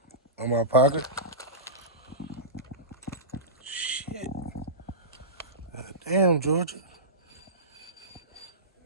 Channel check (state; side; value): normal; both; correlation -0.19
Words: On my pocket? Shit. God damn, Georgia.